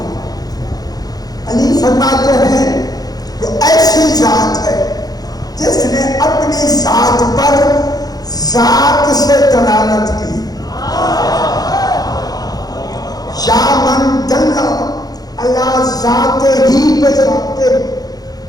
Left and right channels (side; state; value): right; late; 0.19 ms